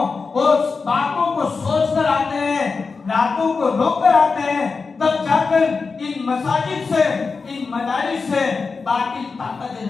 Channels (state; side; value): quieter; right; 4.6 dB